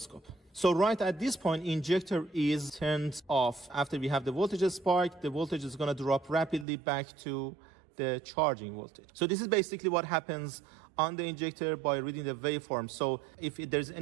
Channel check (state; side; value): drops out; left; at 6.7 s